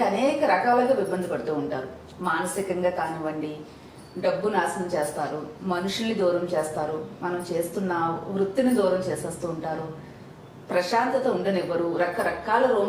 అనేక రకాలుగా ఇబ్బంది పడుతూ ఉంటారు. మానసికంగా కానివ్వండి, డబ్బు నాశనం చేస్తారు, మనుషుల్ని దూరం చేస్తారు, మనం చేస్తున్న వృత్తిని దూరం చేసేస్తూ ఉంటారు, ప్రశాంతత ఉండనివ్వరు, రకరకాల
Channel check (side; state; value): both; identical; correlation 1.00